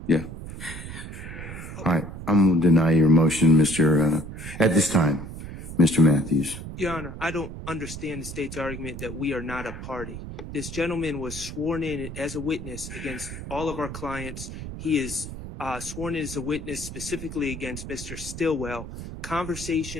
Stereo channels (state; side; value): noise; right; rumble, 10 dB below the sound